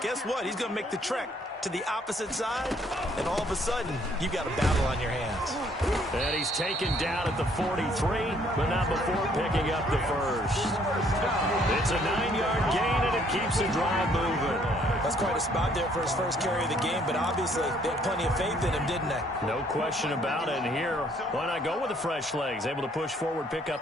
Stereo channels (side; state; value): both; normal; correlation 0.64